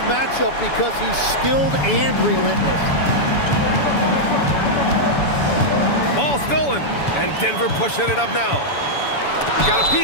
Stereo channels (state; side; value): late; right; 7.0 ms